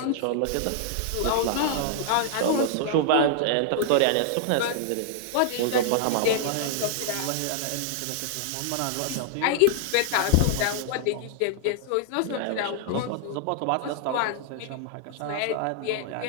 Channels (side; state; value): both; different; correlation -0.01